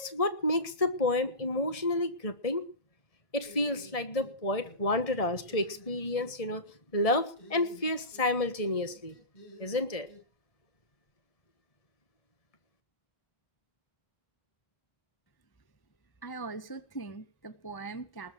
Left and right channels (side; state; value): right; late; 1.7 ms